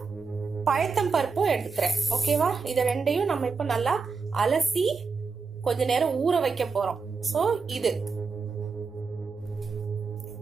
பயத்தம் பருப்பும் எடுத்துக்கிறேன். ஓகேவா? இத ரெண்டையும் நம்ம இப்ப நல்லா அலசி கொஞ்ச நேரம் ஊற வைக்க போறோம். ஸோ இது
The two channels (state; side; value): quieter; left; 4.9 dB